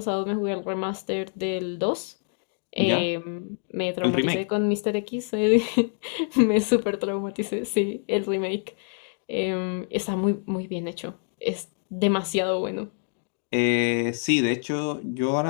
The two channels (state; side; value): silent; right; 56 dB below the other